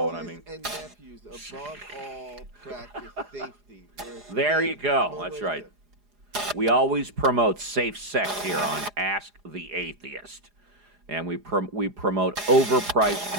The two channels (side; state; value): left; late; 4.9 ms